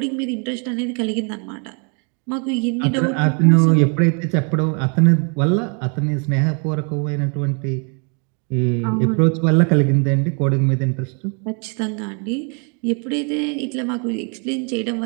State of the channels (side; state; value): left; quieter; 37.6 dB